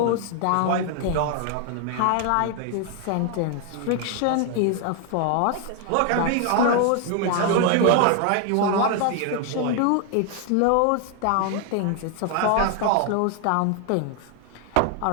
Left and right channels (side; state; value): both; different; correlation 0.00